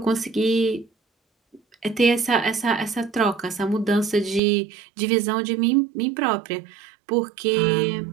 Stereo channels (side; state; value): left; drops out; at 4.4 s